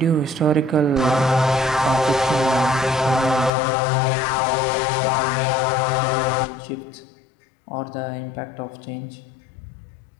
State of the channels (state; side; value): drops out; right; at 3.5 s